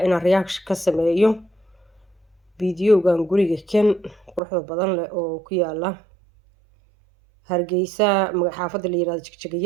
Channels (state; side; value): drops out; left; at 4.4 s